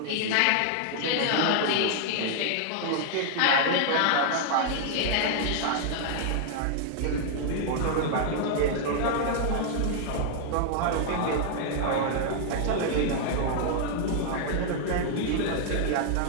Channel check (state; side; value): different; both; correlation 0.00